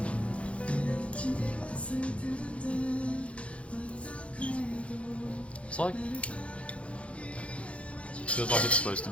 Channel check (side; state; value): right; late; 0.062 ms